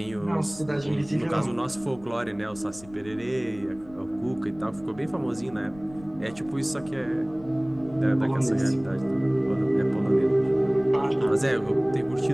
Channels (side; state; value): left; noise; rumble, 21 dB below the sound